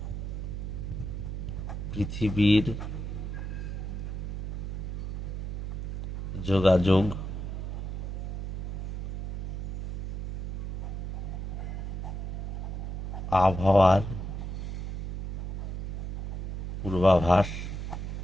পৃথিবীর যোগাযোগ, আবহাওয়ার পূর্বাভাস,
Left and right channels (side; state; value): right; noise; hum, 4 dB below the sound